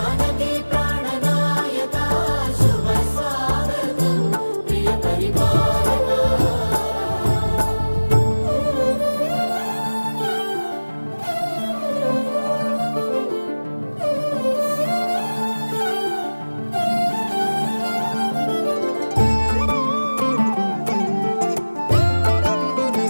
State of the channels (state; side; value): inverted; both; correlation -1.00